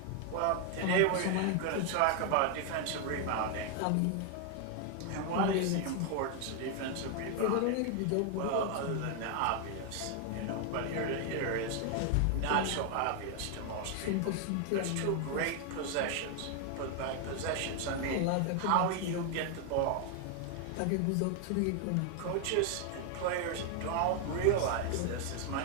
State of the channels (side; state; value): both; different; correlation 0.01